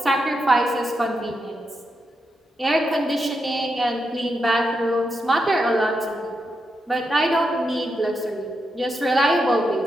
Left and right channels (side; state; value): both; normal; correlation 0.85